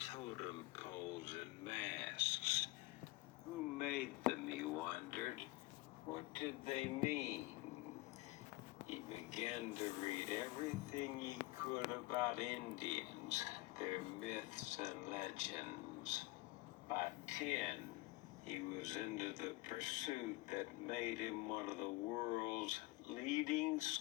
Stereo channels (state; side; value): quieter; right; 20.5 dB